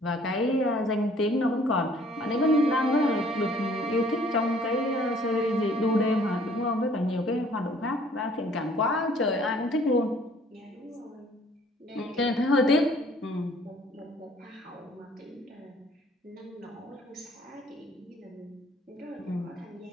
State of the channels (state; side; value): normal; both; correlation 0.57